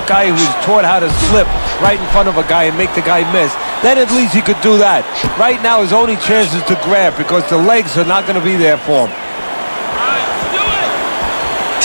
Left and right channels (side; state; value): both; inverted; correlation -1.00